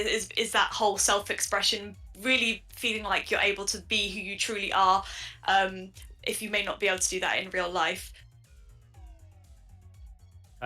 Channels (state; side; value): identical; both; correlation 1.00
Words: that whole self-expression, really feeling like you're able to be who you truly are, if you may not be able to do that in real life.